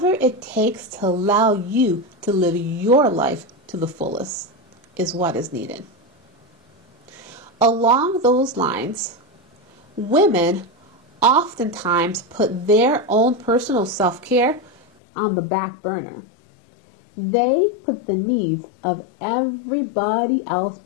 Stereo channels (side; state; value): right; drops out; at 14.8 s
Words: it takes to allow you to live your life to the fullest is what is needed. Along those lines, women oftentimes put their own personal self-care on the back burner. They put the needs of everybody else